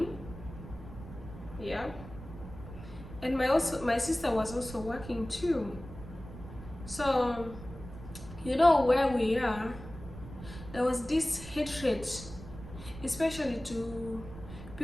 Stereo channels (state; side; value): noise; right; rumble, 13 dB below the sound